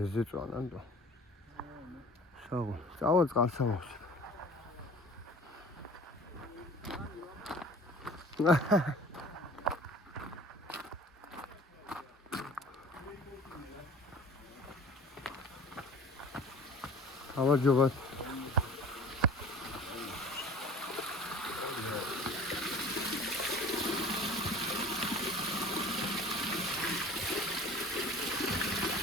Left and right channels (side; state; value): both; normal; correlation 0.44